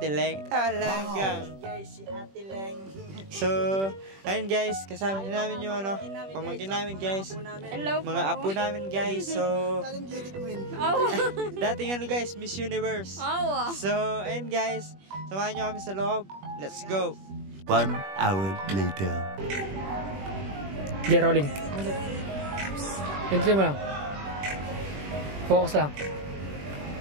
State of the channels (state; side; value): late; left; 21 ms